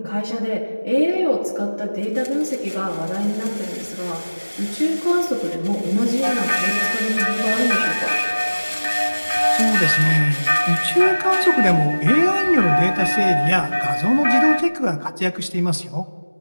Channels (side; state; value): both; inverted; correlation -1.00